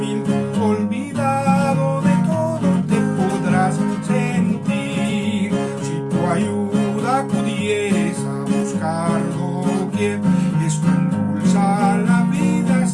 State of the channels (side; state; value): both; identical; correlation 1.00